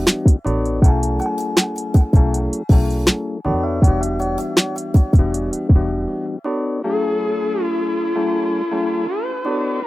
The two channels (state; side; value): normal; both; correlation 0.97